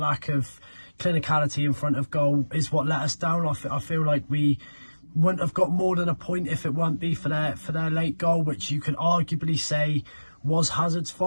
of clinicality in front of goal is what let us down. I feel like we wouldn't have got more than a point if it weren't be for their late goal, which you could arguably say was Hazard's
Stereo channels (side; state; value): both; inverted; correlation -1.00